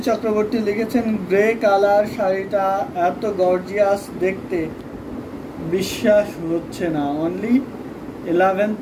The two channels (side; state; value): both; identical; correlation 1.00